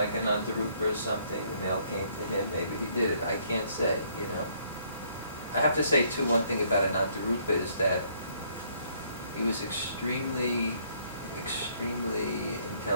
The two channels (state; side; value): inverted; both; correlation -0.65